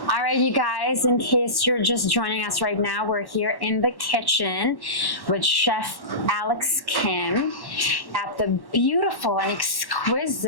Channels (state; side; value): late; right; 1.1 ms